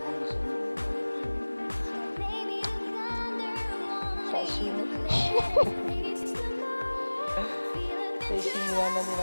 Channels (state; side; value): inverted; both; correlation -1.00